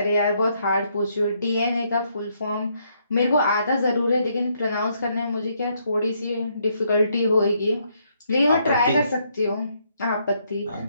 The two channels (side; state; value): both; inverted; correlation -0.73